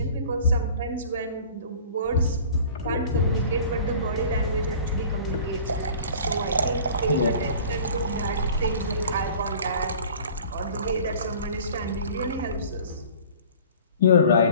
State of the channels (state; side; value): inverted; both; correlation -0.45